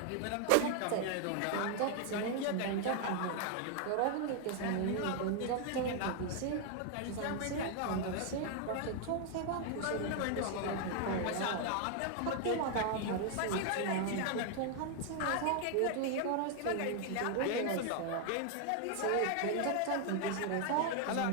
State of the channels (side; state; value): both; different; correlation 0.00